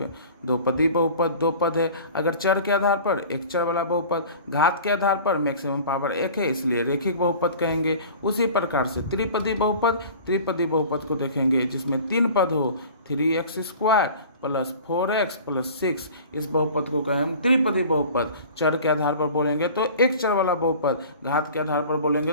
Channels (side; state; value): both; inverted; correlation -0.42